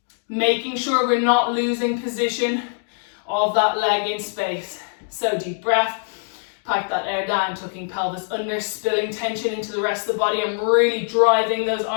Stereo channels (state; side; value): silent; right; digital silence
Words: Making sure we're not losing position of that leg in space. So deep breath, pack that air down, tucking pelvis under, spilling tension into the rest of the body. I'm really driving those